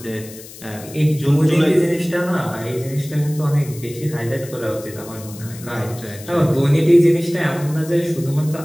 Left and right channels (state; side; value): noise; left; hiss, 17 dB below the sound